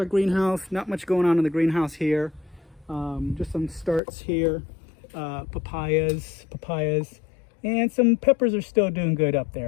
greenhouse. Not much going on in the greenhouse here. Just some starts here. Papayas. And some peppers are still doing good up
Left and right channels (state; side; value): drops out; right; at 4.0 s